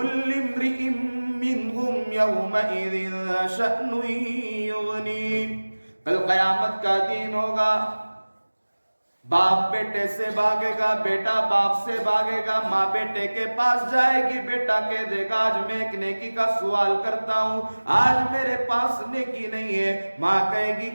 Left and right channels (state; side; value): inverted; both; correlation -1.00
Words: امرئ منہم یومئذ شأن یغنیہ۔ کل قیامت کا دن ہوگا، باپ بیٹے سے بھاگے گا، بیٹا باپ سے بھاگے گا، ماں بیٹے کے پاس جائے گی، بیٹا کہہ دے گا آج میں ایک نیکی کا سوال کرتا ہوں، آج میرے پاس نیکی نہیں ہے۔ ماں کہے گی